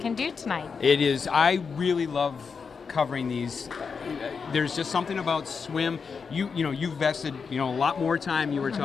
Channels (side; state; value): right; quieter; 5.6 dB